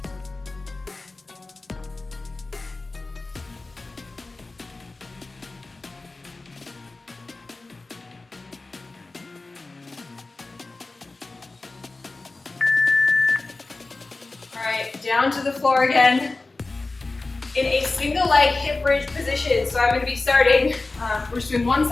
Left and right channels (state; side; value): quieter; right; 3.4 dB